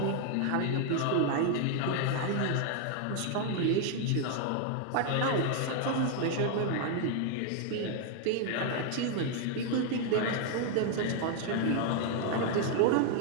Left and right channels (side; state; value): both; different; correlation 0.00